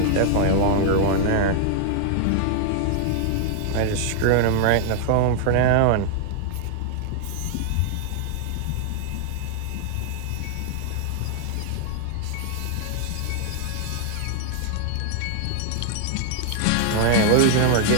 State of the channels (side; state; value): both; different; correlation 0.00